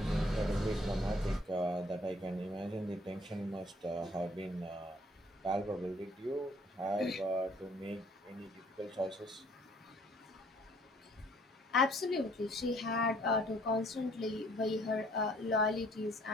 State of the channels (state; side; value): normal; both; correlation 0.61